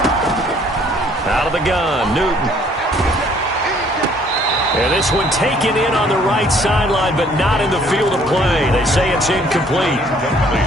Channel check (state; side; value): normal; both; correlation 0.60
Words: Out of the gun, Newton. And this one taken in on the right sideline, but not in the field of play. They say it's incomplete.